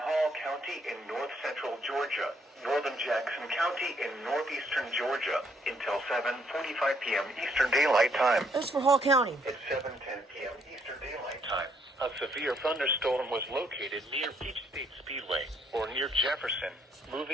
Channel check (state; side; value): normal; both; correlation 0.70